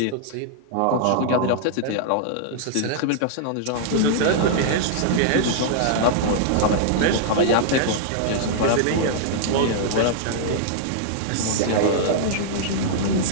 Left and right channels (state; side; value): different; both; correlation -0.01